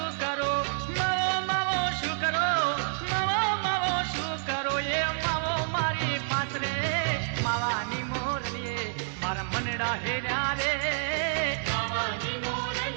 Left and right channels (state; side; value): silent; left; 59 dB below the other